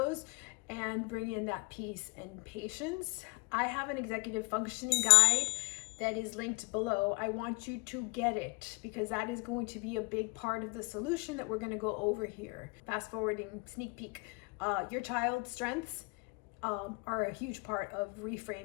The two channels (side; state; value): right; quieter; 28.7 dB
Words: and bring in that peace and patience. I have an executive functioning guide that is linked below. I want you to get it because that is going to be a big part of the solution that we're going to go over here. Fast forwarding, sneak peek. Your child's strengths are a huge part of